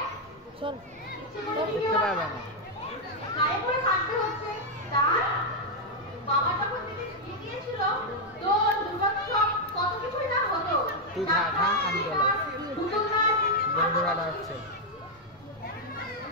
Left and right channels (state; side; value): normal; both; correlation 0.00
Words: গায়ে পড়ে থাকতে হচ্ছে। তার বাবা যখন থেকে বিয়ে দিয়েছিল তো দুর্গোৎসব কত কিছুই না হতো।